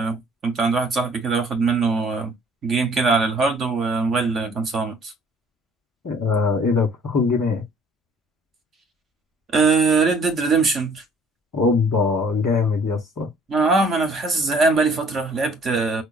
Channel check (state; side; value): normal; both; correlation 0.56